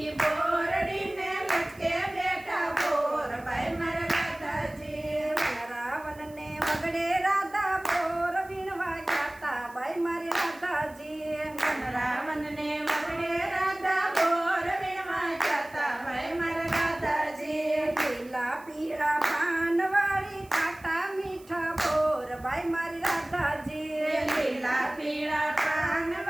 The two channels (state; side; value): noise; right; hiss, 25 dB below the sound